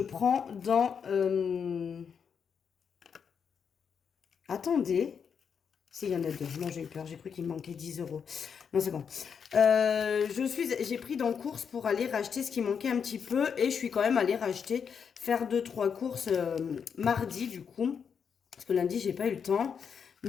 dans... Attendez. S'il y en a deux. Non, j'ai eu peur. J'ai cru qu'il me manquait 10 €. Non, c'est bon. J'ai pris dans course pour aller racheter ce qui manquait un petit peu. Et je suis quand même allée racheter, faire 2-3 courses mardi, du coup. Parce que lundi, j'ai pas eu le temps.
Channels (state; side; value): quieter; right; 6.8 dB